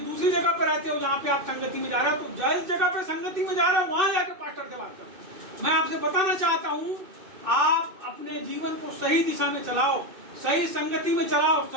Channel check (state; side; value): late; left; 2.6 ms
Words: जगह पर रहते हो जहाँ पे आप संगति में जा रहे हो, तो जिस जगह पे संगति में जा रहे हो वहां जाके पास्टर से बात करो। मैं आपसे बताना चाहता हूँ, आप अपने जीवन को सही दिशा में चलाओ, सही संगति में चलाओ,